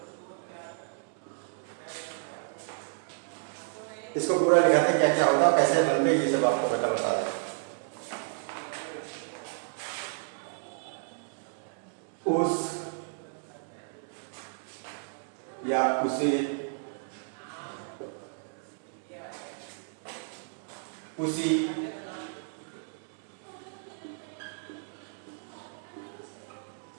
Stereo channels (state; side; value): silent; left; digital silence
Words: इसको पूरा लिखाते हैं क्या क्या होगा, कैसे बनते हैं, ये सब आपको बता रहा है। उस या उसे, उसी,